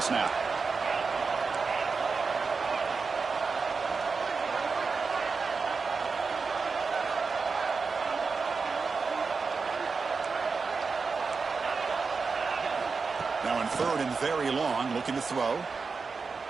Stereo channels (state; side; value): quieter; left; 4.8 dB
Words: snap. third and very long, looking to throw.